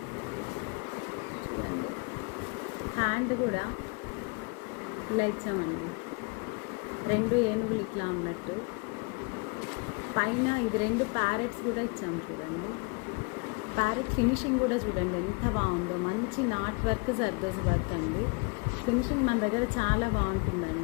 చూడండి, హ్యాండ్ కూడా ఇలా ఇచ్చామండి, 2 ఏనుగులు ఇట్లా ఉన్నట్టు. పైన ఇది 2 ప్యారెట్స్ కూడా ఇచ్చాము. చూడండి, ప్యారెట్ ఫినిషింగ్ కూడా చూడండి ఎంత బాగుందో. మంచి నాట్ వర్క్, జర్దోజీ వర్క్ అండి. ఫినిషింగ్ మన దగ్గర చాలా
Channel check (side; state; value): right; quieter; 32.4 dB